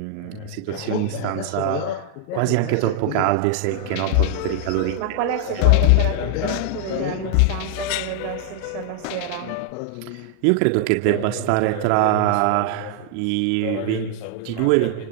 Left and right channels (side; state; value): both; different; correlation 0.00